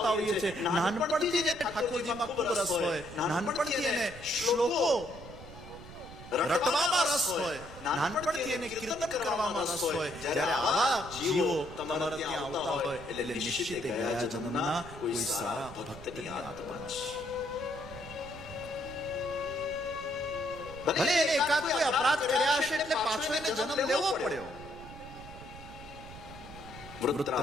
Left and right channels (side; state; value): right; noise; rumble, 15 dB below the sound